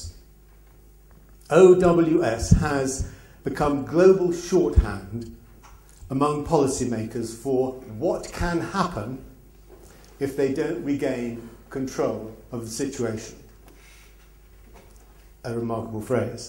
OWS has become global shorthand among policymakers for what can happen if they don't regain control of the situation. A remarkable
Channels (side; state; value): both; identical; correlation 1.00